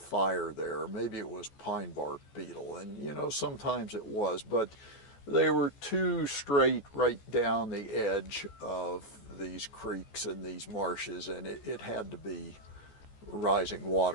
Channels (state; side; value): late; right; 14 ms